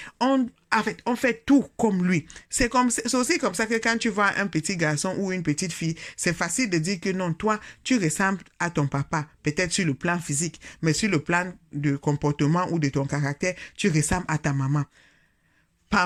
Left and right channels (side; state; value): both; identical; correlation 1.00